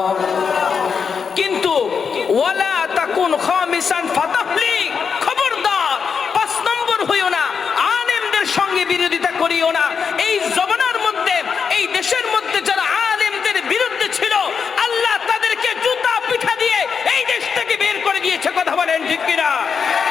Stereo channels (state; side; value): quieter; right; 6.1 dB